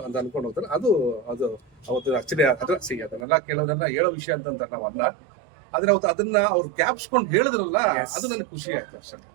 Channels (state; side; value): drops out; left; at 3.2 s